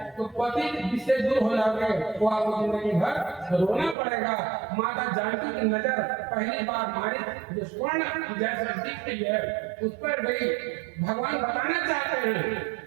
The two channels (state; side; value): drops out; left; at 4.0 s